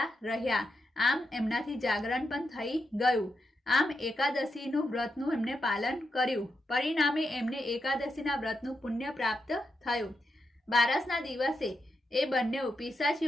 રહ્યા। આમ એમનાથી જાગરણ પણ થઈ ગયું। આમ એકાદશીનું વ્રતનું એમને પાલન કર્યું। પરિણામે એમને એકાદશીના વ્રતનું પુણ્ય પ્રાપ્ત થયું। બારસના દિવસે એ બંને પિશાચ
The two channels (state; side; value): normal; both; correlation 0.86